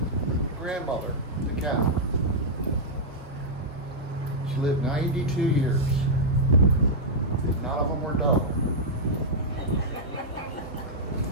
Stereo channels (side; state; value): both; normal; correlation -0.06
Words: grandmother to Catherine. She lived 92 years. None of them were dull.